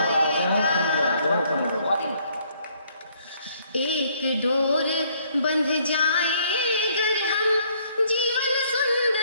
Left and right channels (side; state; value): both; inverted; correlation -0.65